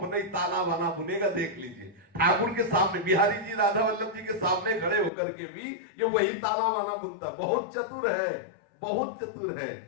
ही ताना बाना बुनेगा। देख लीजिए ठाकुर के सामने, बिहारी जी राधा वल्लभ जी के सामने खड़े होकर के भी ये वही ताना बाना बुनता। बहुत चतुर है, बहुत चतुर है।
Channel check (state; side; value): drops out; right; at 5.1 s